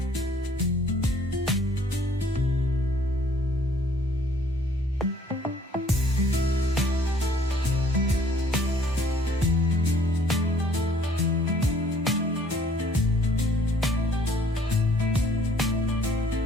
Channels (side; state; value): both; normal; correlation 0.60